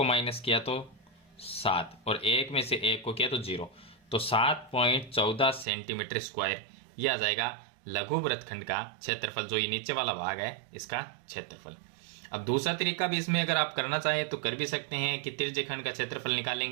माइनस किया तो 7 और 1 में से 1 को किया तो 0, तो 7.14 सेंटीमीटर स्क्वायर ये आ जाएगा लघु वृत्तखंड का क्षेत्रफल, जो ये नीचे वाला भाग है इसका क्षेत्रफल। अब दूसरा तरीका भी इसमें अगर आप करना चाहें तो कर भी सकते हैं कि त्रिज्यखंड का क्षेत्रफल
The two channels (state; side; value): drops out; left; at 5.7 s